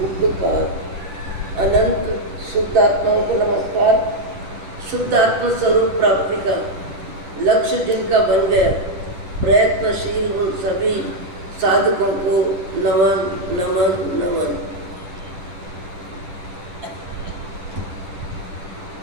उपकार। अनंत शुद्ध आत्माओं को नमस्कार। शुद्ध आत्मा स्वरूप प्राप्ति का लक्ष्य जिनका बन गया, प्रयत्नशील उन सभी साधकों को नमन नमन नमन।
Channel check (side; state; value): left; late; 10 ms